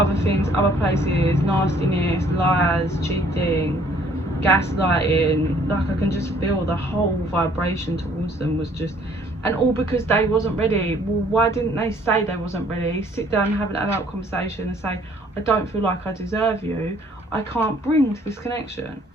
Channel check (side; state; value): both; normal; correlation 0.60